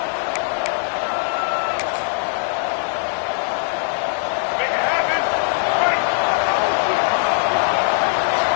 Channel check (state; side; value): silent; right; digital silence